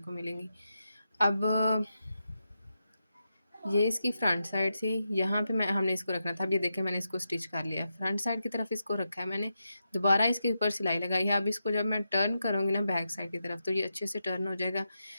मिलेंगी। अब ये इसकी फ्रंट साइड थी, यहाँ पे मैं हमने इसको रखना था। अब ये देखें, मैंने इसको स्टिच कर लिया, फ्रंट साइड की तरफ इसको रखा है मैंने, दोबारा इसके ऊपर सिलाई लगाई है। अब इसको जब मैं टर्न करूँगी ना बैक साइड की तरफ, तो ये अच्छे से टर्न हो जाएगा।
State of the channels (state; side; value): inverted; both; correlation -0.87